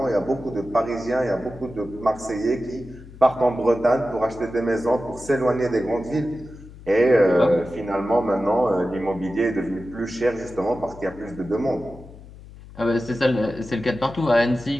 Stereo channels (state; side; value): noise; left; hum, 18 dB below the sound